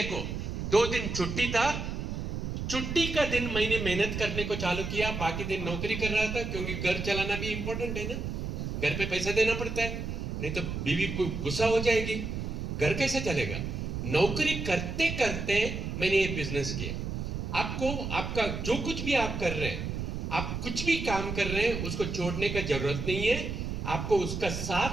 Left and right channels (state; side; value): noise; right; rumble, 4 dB below the sound